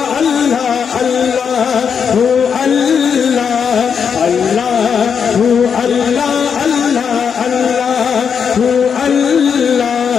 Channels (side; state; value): right; quieter; 6.8 dB